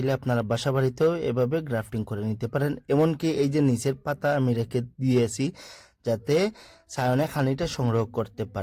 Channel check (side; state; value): both; identical; correlation 1.00